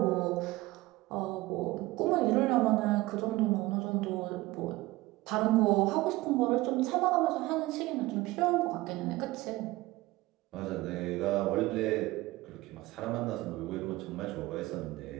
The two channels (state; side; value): quieter; left; 19.4 dB